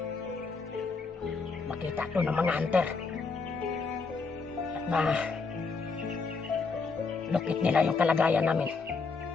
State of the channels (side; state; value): right; quieter; 4.5 dB